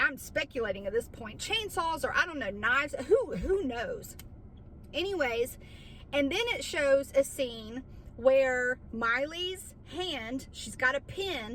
speculating at this point, chainsaws, or I don't know, knives, who knows? Anyways, and then it shows a scene where Miley's hand, she's got a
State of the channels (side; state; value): both; identical; correlation 1.00